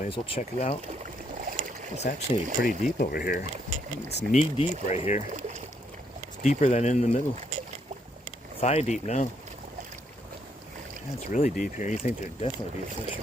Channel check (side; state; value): both; normal; correlation 0.73